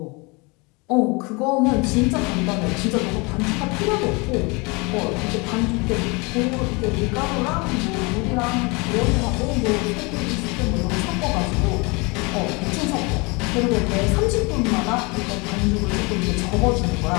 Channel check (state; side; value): quieter; right; 28.0 dB